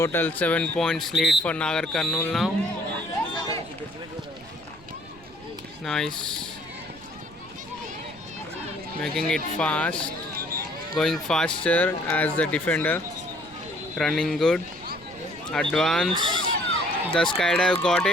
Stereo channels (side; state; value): right; noise; rumble, 23 dB below the sound